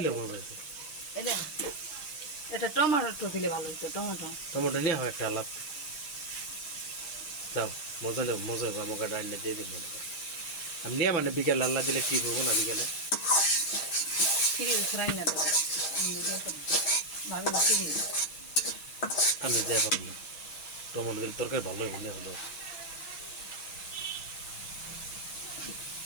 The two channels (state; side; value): late; right; 5.3 ms